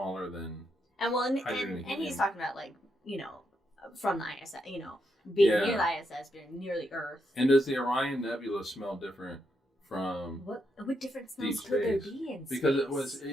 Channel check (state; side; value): normal; both; correlation 0.81